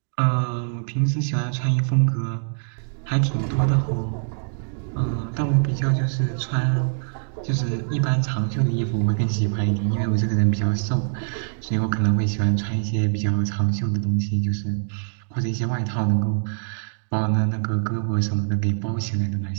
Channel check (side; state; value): left; silent; digital silence